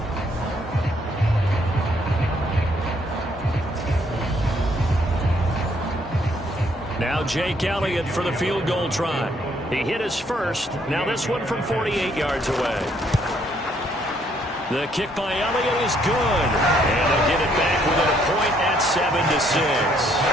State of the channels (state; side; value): normal; both; correlation 0.68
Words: Now Jake Elliott for the field goal try. He hit his first. Now this one from 48 yards away. The kick by Elliott is good. And they'll get it back within a point at